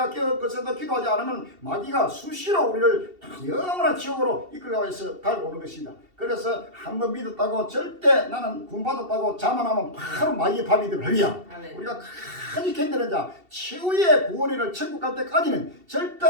깨어서 기도하지 않으면 마귀가 수시로 우리를 영원한 지옥으로 이끌어가고 있어 달고 오는 것입니다. 그래서 한번 믿었다고 절대 나는 구원받았다고 자만하면 바로 마귀의 밥이 되고. 할렐루야. 우리가 간이 견디는 자 최후의 구원을 천국 갈 때까지는 절대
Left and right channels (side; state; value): left; late; 2.7 ms